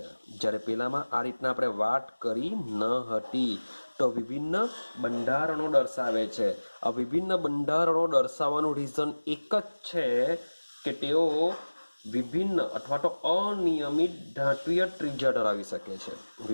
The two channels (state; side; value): inverted; both; correlation -1.00